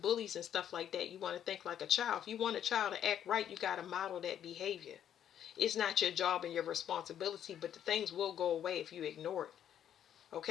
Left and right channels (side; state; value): right; quieter; 9.9 dB